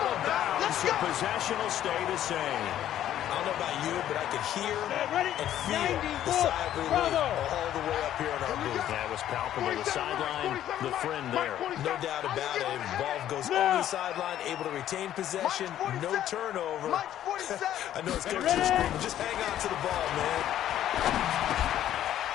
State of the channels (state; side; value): quieter; right; 11.7 dB